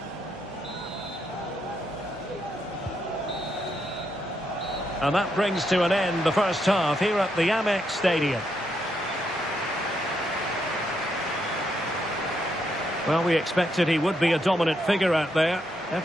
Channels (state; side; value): normal; both; correlation 0.79